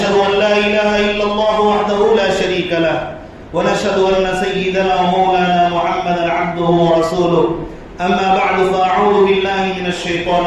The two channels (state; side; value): identical; both; correlation 1.00